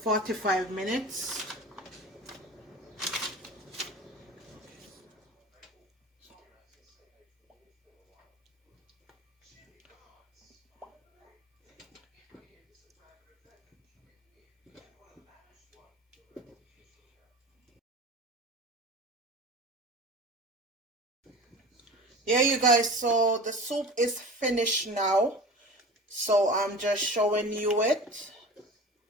minutes. Yeah, you guys, so the soup is finished now. So I'm just showing you it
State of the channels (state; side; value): normal; both; correlation 0.36